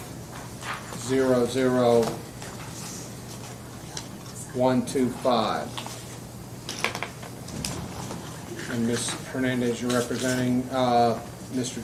And Ms. Hernandez, you're representing Mr.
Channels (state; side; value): identical; both; correlation 1.00